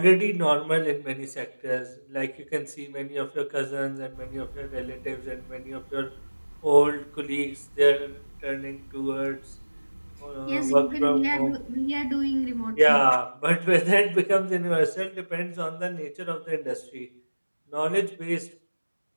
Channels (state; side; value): inverted; both; correlation -1.00